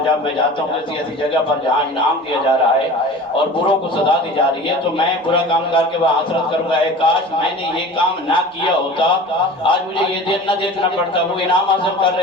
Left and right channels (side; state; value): both; normal; correlation 0.38